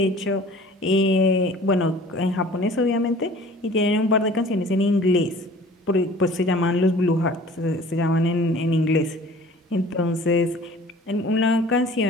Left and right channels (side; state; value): both; normal; correlation 0.47